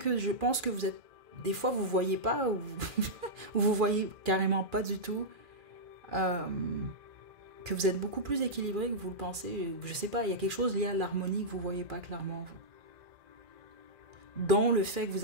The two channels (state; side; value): late; left; 2.4 ms